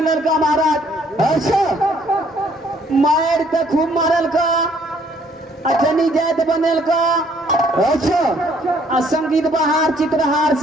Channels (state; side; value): normal; both; correlation 0.64